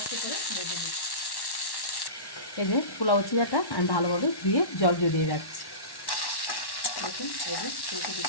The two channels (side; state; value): right; late; 1.1 ms